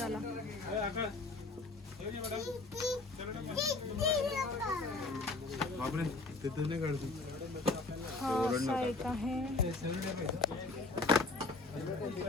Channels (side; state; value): right; quieter; 3.5 dB